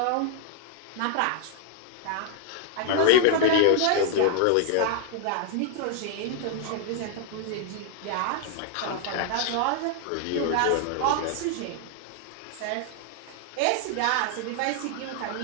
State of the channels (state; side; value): different; both; correlation 0.00